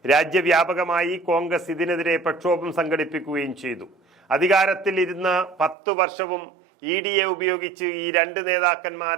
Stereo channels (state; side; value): drops out; left; at 5.8 s